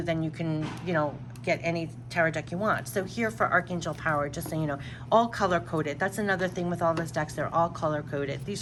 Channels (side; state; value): both; identical; correlation 1.00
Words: then you can, you know, get any tarot deck you want. So here for Archangel Power, just so you know, all color coded. That's another thing with all those decks, they're all color coded.